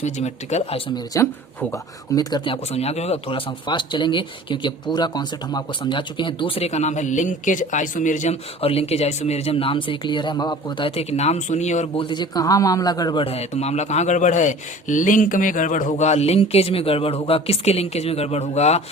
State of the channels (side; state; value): both; normal; correlation 0.44